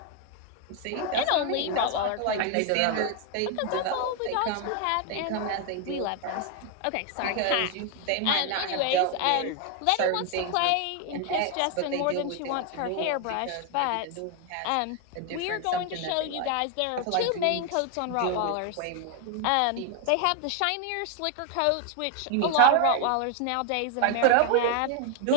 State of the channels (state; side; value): different; both; correlation 0.00